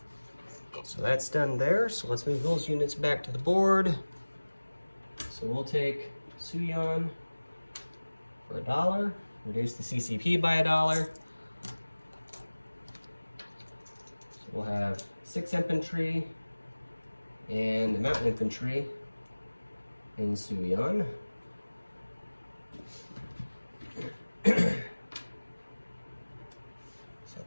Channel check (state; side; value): inverted; both; correlation -1.00